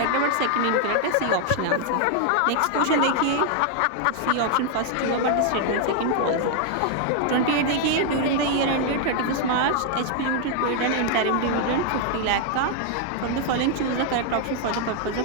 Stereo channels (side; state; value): both; different; correlation 0.00